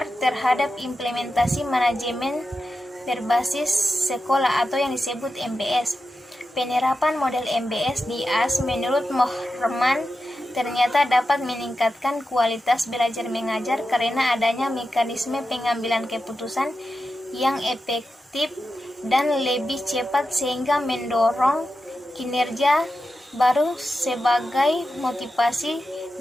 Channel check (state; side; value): normal; both; correlation 0.90